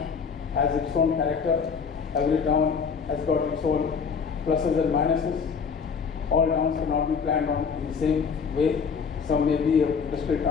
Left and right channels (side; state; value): right; quieter; 6.0 dB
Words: has its own character. Every town has got its own pluses and minuses. All towns cannot be planned on in the same way. Some may be an industrial